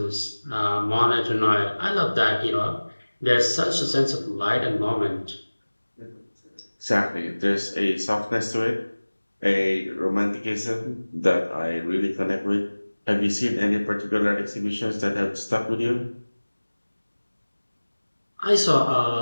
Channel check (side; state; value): both; inverted; correlation -1.00